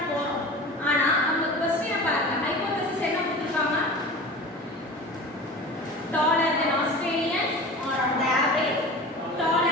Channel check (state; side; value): normal; both; correlation 0.35